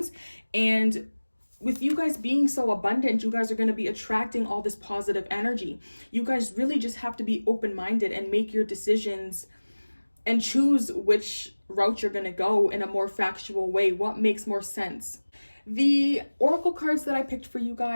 And with you guys being so abundant, you guys are going to be attracting all this positive energy. You guys really just have to be open-minded and make your decisions and choose which route you're going to go in a more factual way. What makes more sense? The oracle cards that I picked for you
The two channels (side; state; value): both; inverted; correlation -1.00